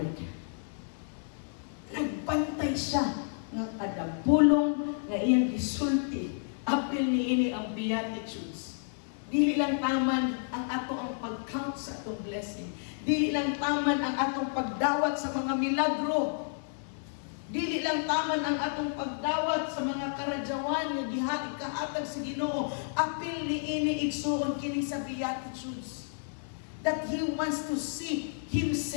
Nagbantay siya nga kada pulong nga iyang gisulti. Apil niini ang Beatitudes. Dili lang taman ang ato ang pag-count sa atong blessing. Dili lang taman ang atong pagdawat sa mga milagro. Dili lang taman ang atong pagdawat sa mga karadyawan nga gihatag sa Ginoo. Apil niini igsuon kini sa Beatitudes. That He wants to see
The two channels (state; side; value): silent; right; 57 dB below the other